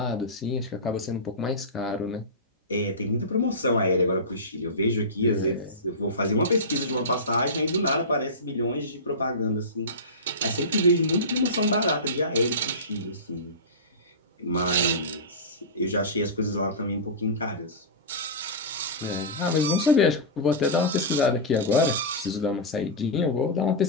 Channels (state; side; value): normal; both; correlation -0.18